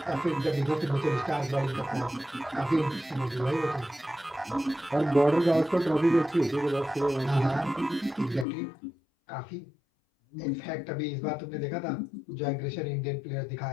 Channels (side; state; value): right; drops out; at 8.5 s